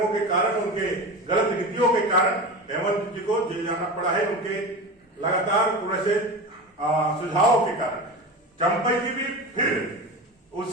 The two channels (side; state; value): both; normal; correlation 0.27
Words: के कारण, उनके गलत नीतियों के कारण हेमंत जी को जेल जाना पड़ा है, उनके लगातार ऐसे सुझावों के कारण। चंपई जी भी फिर